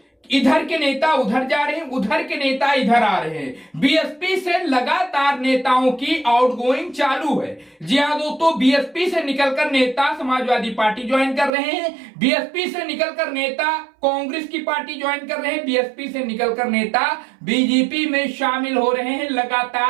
इधर के नेता उधर जा रहे हैं, उधर के नेता इधर आ रहे हैं। बीएसपी से लगातार नेताओं की आउटगोइंग चालू है। जी हाँ दोस्तों, बीएसपी से निकलकर नेता समाजवादी पार्टी ज्वाइन कर रहे हैं, बीएसपी से निकलकर नेता कांग्रेस की पार्टी ज्वाइन कर रहे हैं, बीएसपी से निकलकर नेता बीजेपी में शामिल हो रहे हैं।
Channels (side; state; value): left; drops out; at 11.5 s